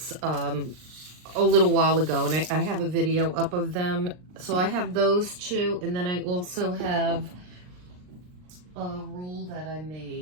a little while ago, and I have a video up of them. So I have those two, and then I also have a roll that I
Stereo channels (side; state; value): left; late; 39 ms